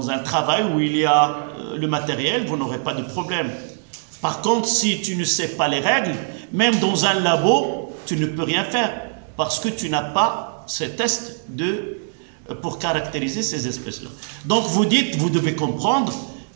travail où il y a le matériel, vous n'aurez pas de problème. Par contre, si tu ne sais pas les règles, même dans un labo, tu ne peux rien faire parce que tu n'as pas ces tests pour caractériser ces espèces-là. Donc vous dites, vous devez comprendre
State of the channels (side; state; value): left; silent; digital silence